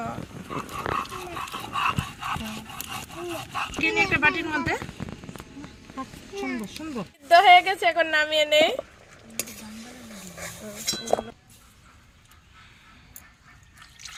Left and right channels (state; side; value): identical; both; correlation 1.00